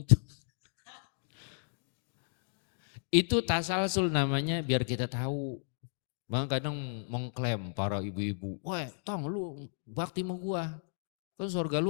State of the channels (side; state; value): right; silent; digital silence